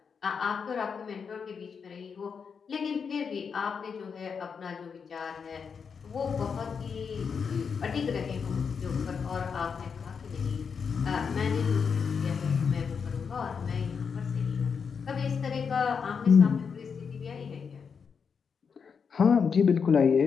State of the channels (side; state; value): right; quieter; 6.1 dB